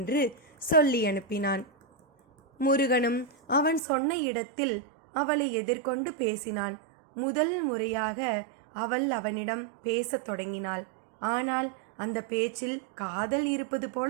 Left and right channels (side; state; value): left; drops out; at 3.8 s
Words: சொல்லி அனுப்பினான். முருகனும் அவன் சொன்ன இடத்தில் அவளை எதிர்கொண்டு பேசினான். முதல் முறையாக அவள் அவனிடம் பேசத் தொடங்கினாள். ஆனால் அந்த பேச்சில் காதல் இருப்பது போல